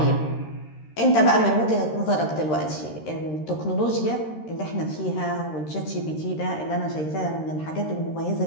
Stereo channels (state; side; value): late; right; 13 ms